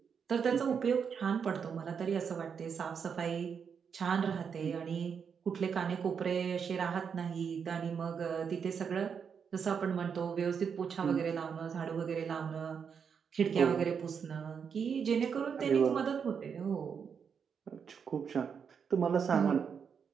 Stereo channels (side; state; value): left; quieter; 6.7 dB